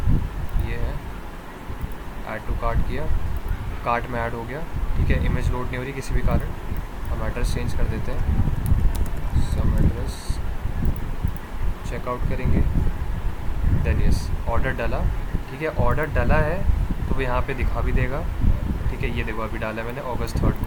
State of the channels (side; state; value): both; identical; correlation 1.00